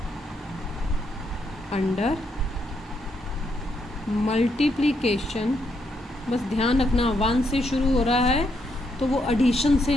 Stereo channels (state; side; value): normal; both; correlation 0.77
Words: under multiplication। बस ध्यान रखना 1 से शुरू हो रहा है तो वो एडिशन से